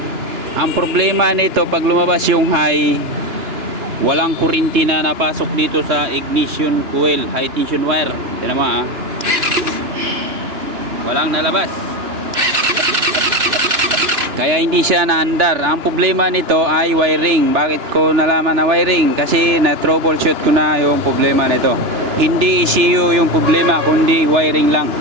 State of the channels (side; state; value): left; late; 2.9 ms